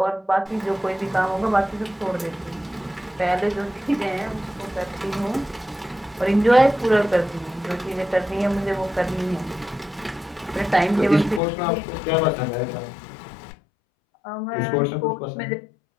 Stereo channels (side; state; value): right; drops out; at 11.4 s